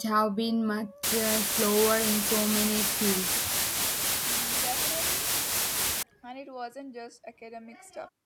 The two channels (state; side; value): identical; both; correlation 1.00